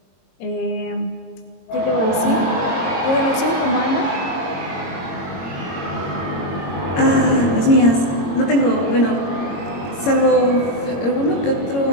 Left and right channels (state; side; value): late; right; 22 ms